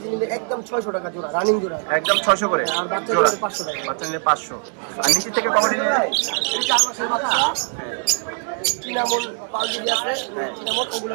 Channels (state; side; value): silent; left; 59 dB below the other